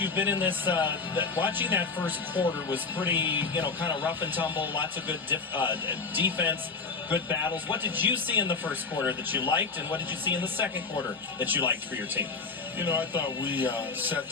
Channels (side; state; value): right; quieter; 4.5 dB